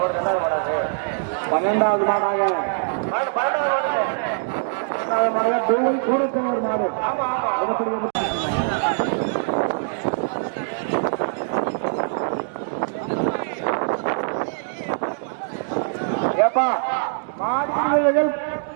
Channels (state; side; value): silent; left; digital silence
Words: 12வது மாடாக தூவல் சூழ்த்தவர் மாடு. ஏப்பா மாடு